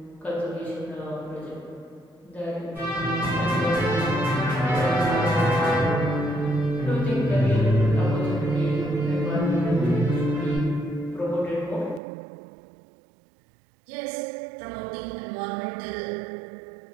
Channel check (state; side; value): drops out; left; at 12.0 s